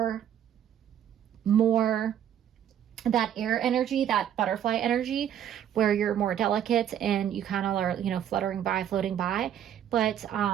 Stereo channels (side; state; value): left; quieter; 10.0 dB